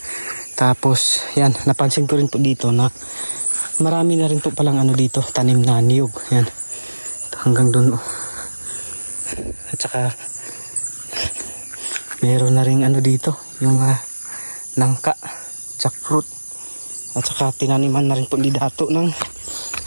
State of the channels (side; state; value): both; inverted; correlation -1.00